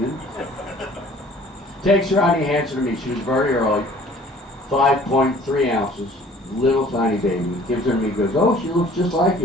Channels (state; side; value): normal; both; correlation 0.52